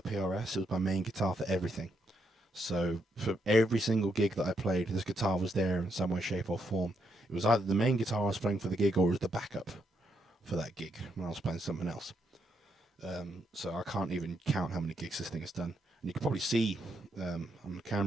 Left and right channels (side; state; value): both; normal; correlation 0.78